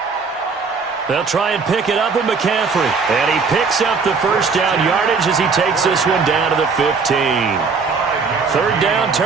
They'll try and pick it up with McCaffrey. And he picks up the first down yardage as he takes this one down to the 15. 3rd down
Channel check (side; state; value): left; quieter; 4.9 dB